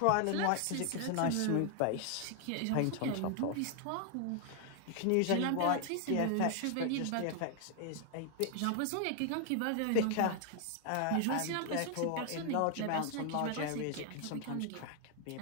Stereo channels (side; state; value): both; different; correlation 0.00